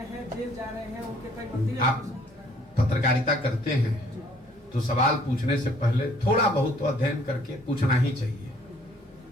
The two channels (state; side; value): normal; both; correlation 0.60